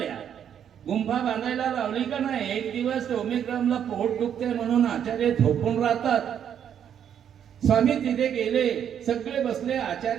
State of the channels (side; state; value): left; quieter; 9.0 dB